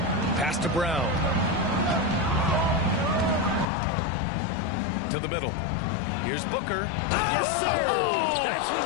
Pass to Brown. To the middle. Here's Booker. Yes, sir. Oh! That's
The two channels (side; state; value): right; drops out; at 3.7 s